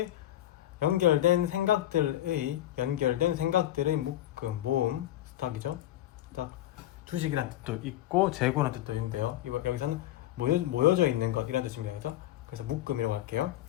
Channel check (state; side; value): quieter; right; 13.6 dB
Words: 연결된 생각들의 묶음, 모음, 스탁이죠. 딱 주식이라는 뜻도 있고 재고라는 뜻도 있는데요. 여기서는 모여져 있는 것 이런 뜻입니다. 그죠? 그래서 묶음이라고 할게요.